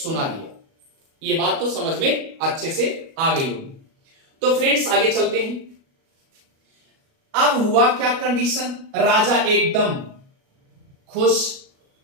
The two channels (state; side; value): late; left; 37 ms